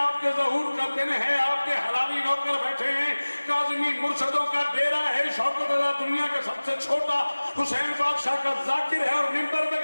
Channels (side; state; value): both; inverted; correlation -1.00